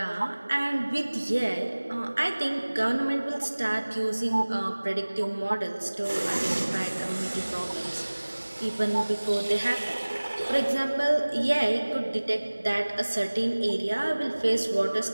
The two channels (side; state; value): both; inverted; correlation -1.00